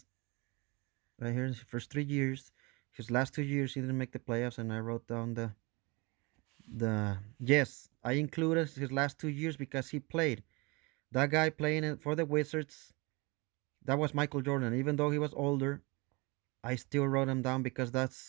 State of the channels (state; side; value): quieter; left; 26.9 dB